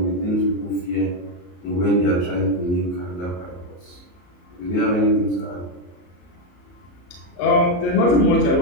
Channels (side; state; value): right; late; 34 ms